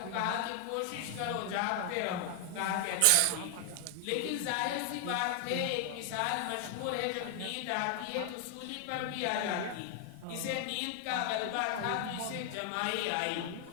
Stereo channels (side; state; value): both; different; correlation 0.00